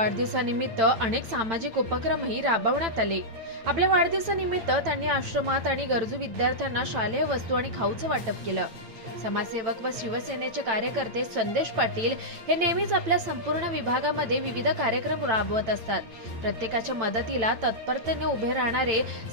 अनेक सामाजिक उपक्रमही राबवण्यात आले. आपल्या वाढदिवसानिमित्त त्यांनी आश्रमात आणि गरजू विद्यार्थ्यांना शालेय वस्तू आणि खाऊचं वाटप केलं. समाजसेवक व शिवसेनेचे कार्यकर्ते संदेश पाटील हे नेहमीच आपल्या संपूर्ण विभागामध्ये विविध कार्यक्रम राबवत असतात. प्रत्येकाच्या मदतीला तत्परतेने उभे राहणारे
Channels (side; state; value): left; late; 9.0 ms